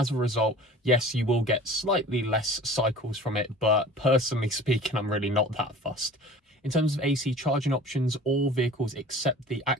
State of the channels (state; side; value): normal; both; correlation 0.43